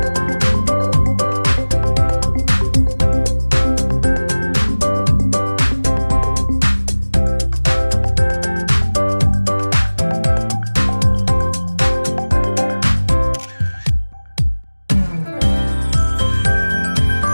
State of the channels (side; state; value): both; inverted; correlation -1.00